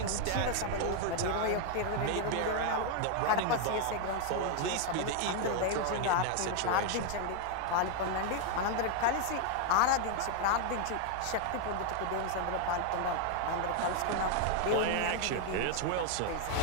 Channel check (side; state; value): both; different; correlation 0.00